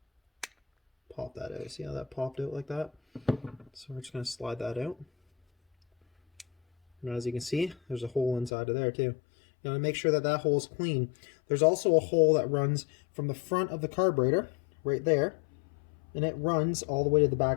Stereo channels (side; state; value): right; drops out; at 8.5 s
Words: pop that out. See how that popped out like that? So we're just going to slide that out. And as you can see, there's a hole inside of there too. You want to make sure that that hole is clean. There's also a hole that runs from the front of the carburetor, right there, and it runs all the way to the